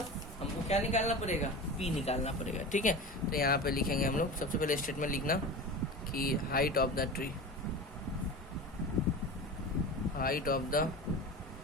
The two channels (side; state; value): both; normal; correlation 0.31